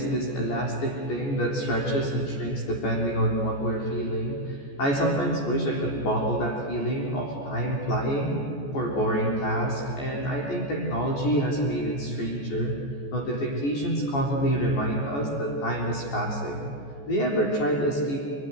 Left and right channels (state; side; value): late; right; 14 ms